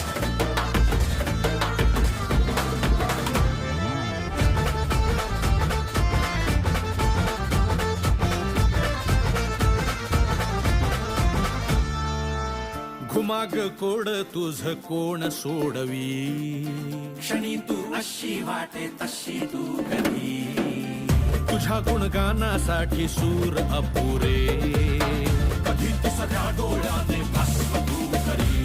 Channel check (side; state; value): both; identical; correlation 1.00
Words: घुमाग कोड तुझ कोण सोडवी क्षणी तू अशी वाटे तशी तू कधी तुझ्या गुणगानासाठी सूर अपुरे कधी तू सगळ्या डोळ्याने